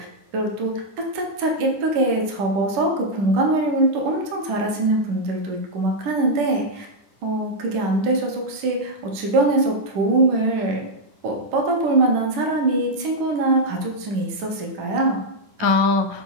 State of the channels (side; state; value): left; late; 10 ms